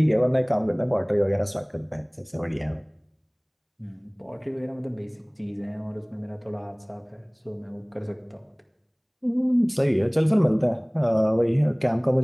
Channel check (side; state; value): both; identical; correlation 1.00